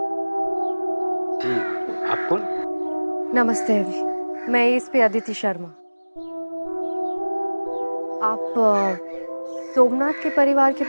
आप कौन? नमस्ते अभी, मैं इस पे अदिति शर्मा। आप सोमनाथ के परिवार के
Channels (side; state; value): both; inverted; correlation -1.00